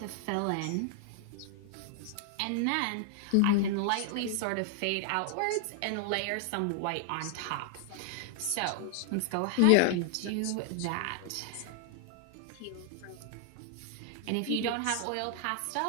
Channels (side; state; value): both; different; correlation 0.00